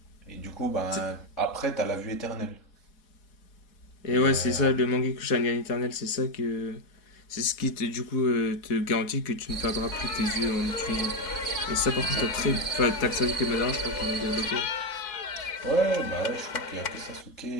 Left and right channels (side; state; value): right; late; 4.1 ms